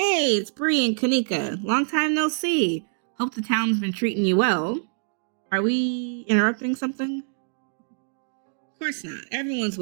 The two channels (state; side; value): silent; left; digital silence